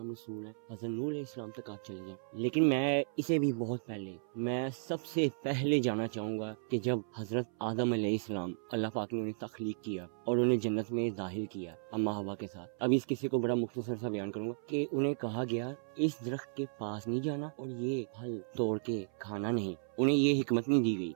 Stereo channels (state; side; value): silent; left; 55 dB below the other